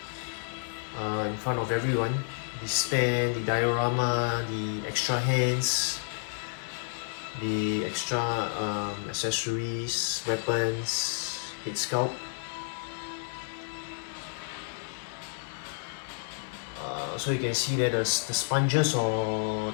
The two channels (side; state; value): right; silent; digital silence